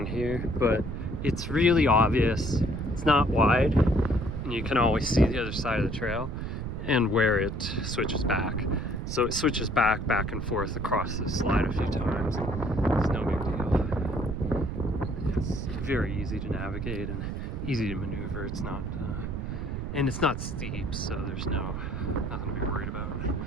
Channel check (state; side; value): noise; right; rumble, 4 dB below the sound